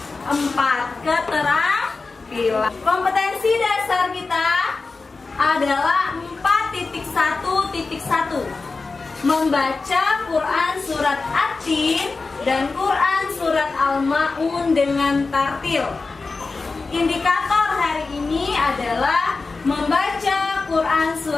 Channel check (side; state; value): right; quieter; 4.0 dB